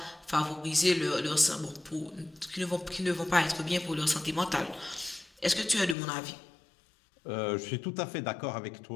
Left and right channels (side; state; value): right; drops out; at 6.0 s